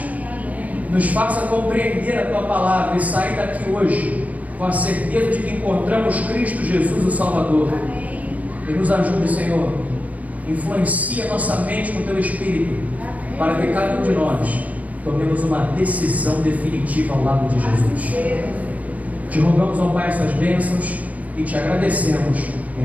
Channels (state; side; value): late; left; 0.071 ms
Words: nos faça compreender a Tua palavra e sair daqui hoje com a certeza de que encontramos Cristo Jesus, o Salvador. E nos ajude, Senhor, influencia nossa mente com o Teu Espírito, para que cada um de nós tomemos uma decisão definitiva ao lado de Jesus. Te rogamos, ó Pai, essas bênçãos e te agradecemos,